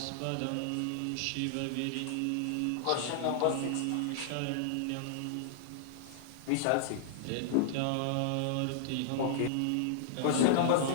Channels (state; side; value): different; both; correlation -0.01